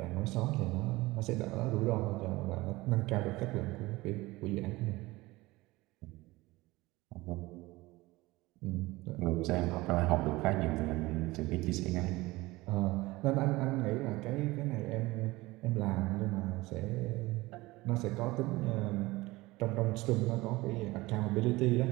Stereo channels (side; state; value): left; quieter; 20.4 dB